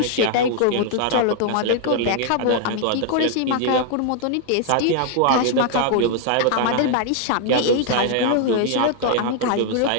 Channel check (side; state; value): both; different; correlation 0.00